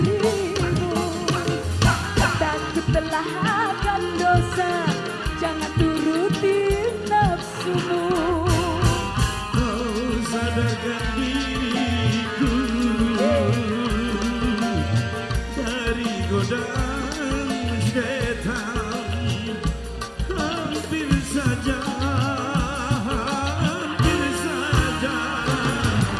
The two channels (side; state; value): both; identical; correlation 1.00